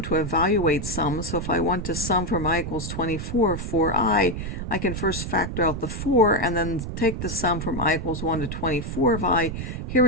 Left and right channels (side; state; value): right; noise; rumble, 5 dB below the sound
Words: to evaluate sums. So if I want to sum from I equals 24 for I can first factor out the 4 and then take the sum from I equals 1 to 24 of I. Here